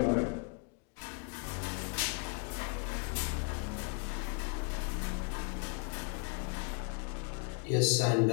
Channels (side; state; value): right; quieter; 35.2 dB